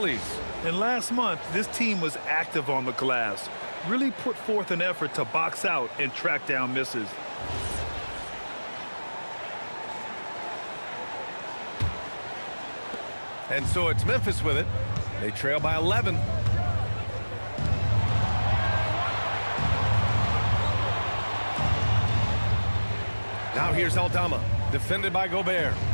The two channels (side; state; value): both; inverted; correlation -1.00